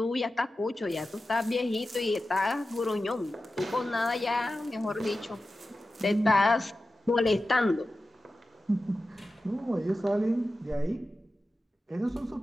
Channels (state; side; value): normal; both; correlation 0.93